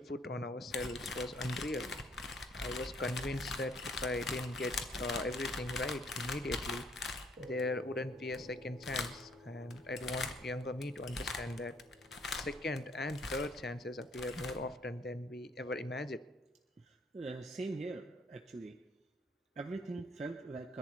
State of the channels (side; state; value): both; normal; correlation 0.64